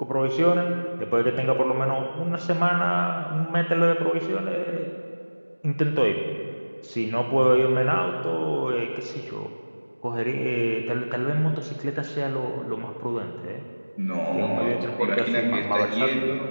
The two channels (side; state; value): both; inverted; correlation -1.00